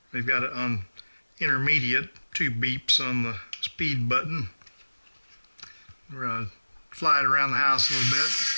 We've got it on intermediate, 2 beeps on the speed button. We're going to fly it around the house a little bit.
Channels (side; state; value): both; inverted; correlation -1.00